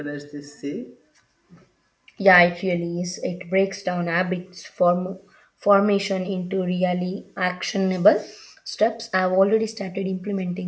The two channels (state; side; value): identical; both; correlation 1.00